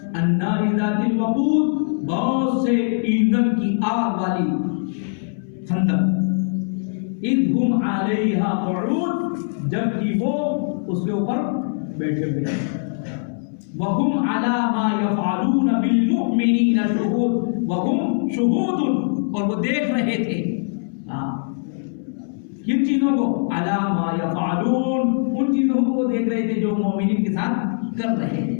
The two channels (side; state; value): right; silent; 64 dB below the other